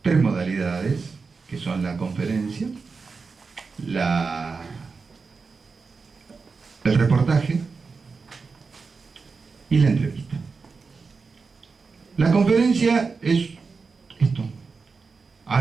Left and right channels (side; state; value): left; quieter; 4.7 dB